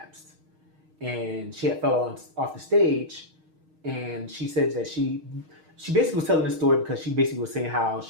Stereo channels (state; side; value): late; left; 6.4 ms